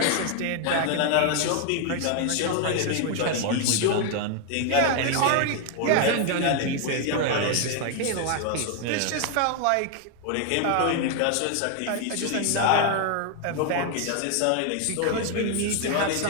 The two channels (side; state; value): both; different; correlation 0.00